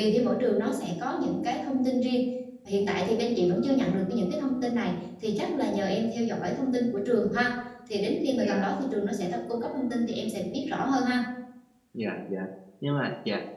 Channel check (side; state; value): both; identical; correlation 1.00